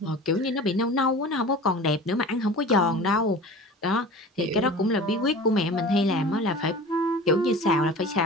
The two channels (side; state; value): both; normal; correlation 0.38